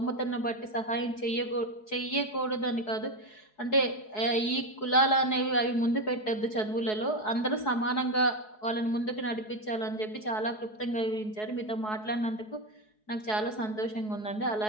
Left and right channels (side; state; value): right; late; 4.7 ms